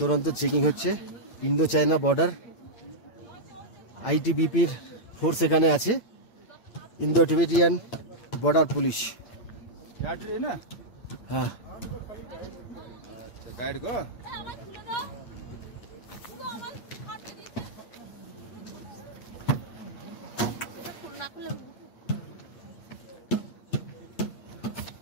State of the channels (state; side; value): late; right; 8.9 ms